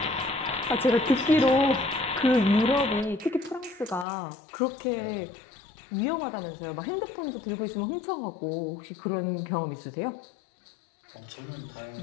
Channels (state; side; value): drops out; right; at 4.0 s